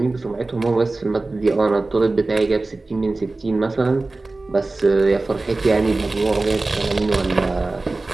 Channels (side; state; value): left; quieter; 3.2 dB